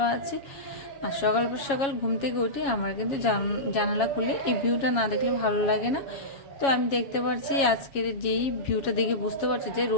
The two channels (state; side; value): late; right; 7.3 ms